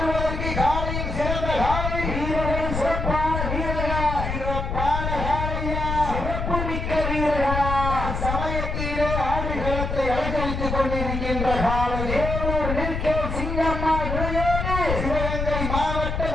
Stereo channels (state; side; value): noise; left; rumble, 3 dB below the sound